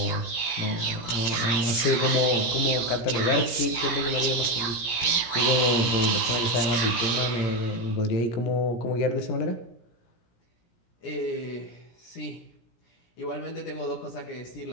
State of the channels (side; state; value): right; late; 17 ms